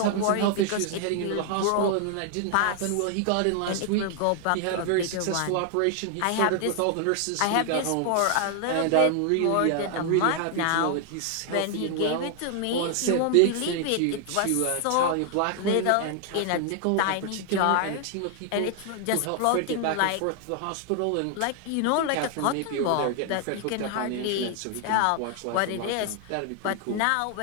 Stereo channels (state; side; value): different; both; correlation 0.00